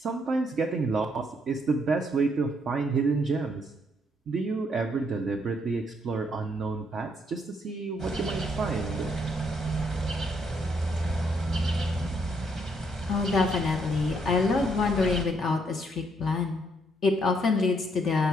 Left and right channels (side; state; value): both; normal; correlation 0.72